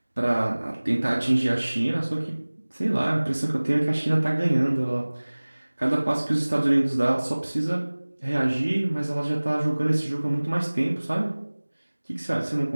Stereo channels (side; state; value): both; inverted; correlation -1.00